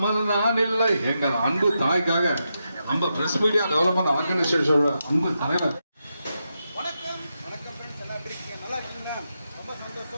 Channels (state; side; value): inverted; both; correlation -0.86